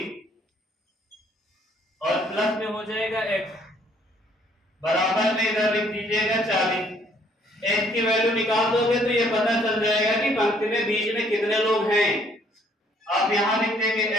और प्लस में हो जाएगा x, बराबर में इधर लिख दीजिएगा 40। x की वैल्यू निकाल दोगे तो ये पता चल जाएगा कि पंक्ति में बीच में कितने लोग हैं। आप यहां लिख देंगे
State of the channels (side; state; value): both; normal; correlation 0.63